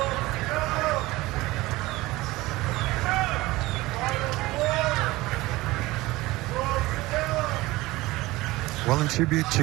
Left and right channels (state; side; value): quieter; left; 19.6 dB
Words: Well, in tribute